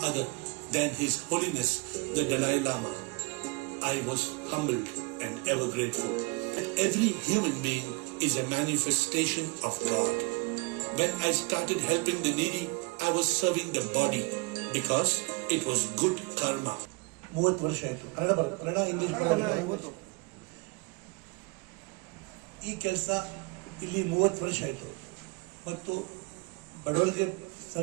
other than His Holiness the Dalai Lama. I was humbled and ever grateful. Every human being is a manifestation of God. When I started helping the needy, I was serving the body because it was good karma. 30 ವರ್ಷ ಆಯ್ತು. Kannada English ಈ ಕೆಲಸ ಇಲ್ಲಿ 30 ವರ್ಷ ಆಯ್ತು ಮತ್ತು ಬಡವರಿಗೆ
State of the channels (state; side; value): quieter; left; 27.9 dB